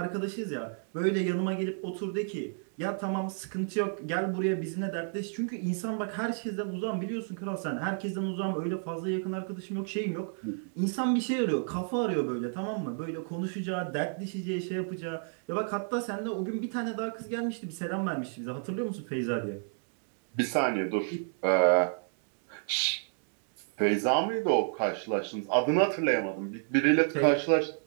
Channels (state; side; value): silent; left; digital silence